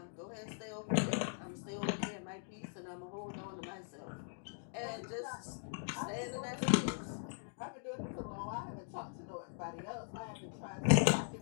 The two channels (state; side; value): silent; right; digital silence